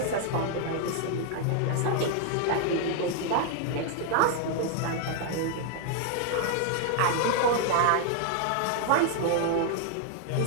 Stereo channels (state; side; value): different; both; correlation 0.00